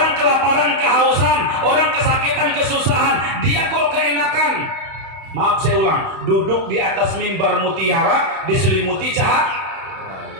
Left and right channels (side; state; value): left; late; 32 ms